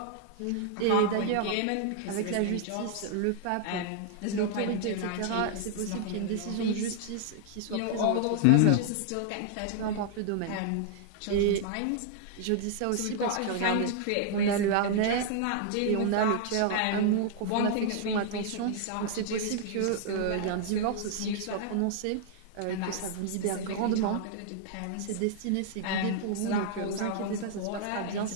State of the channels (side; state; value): both; different; correlation -0.01